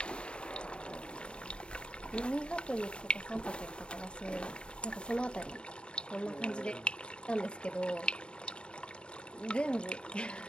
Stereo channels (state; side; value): late; right; 0.053 ms